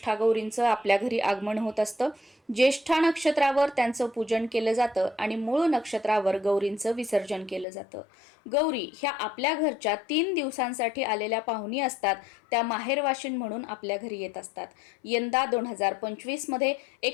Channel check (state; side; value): drops out; right; at 7.7 s